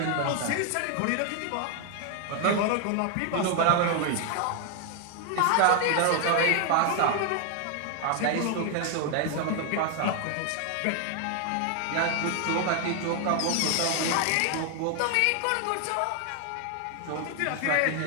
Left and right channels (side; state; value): both; different; correlation 0.00